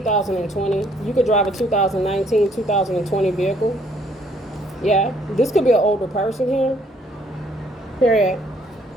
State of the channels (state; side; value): normal; both; correlation 0.65